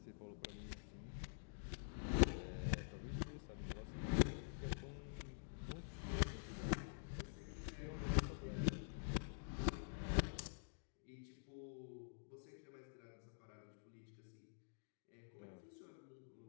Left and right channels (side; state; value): right; silent; digital silence